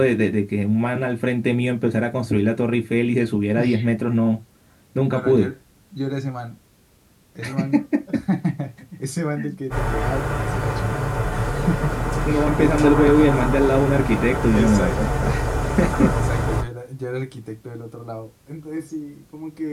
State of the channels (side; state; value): both; identical; correlation 1.00